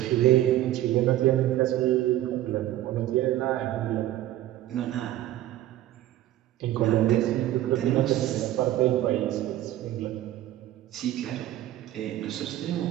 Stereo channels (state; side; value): quieter; left; 14.0 dB